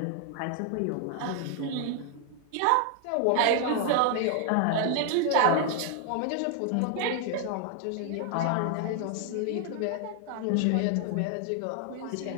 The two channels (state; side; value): different; both; correlation 0.00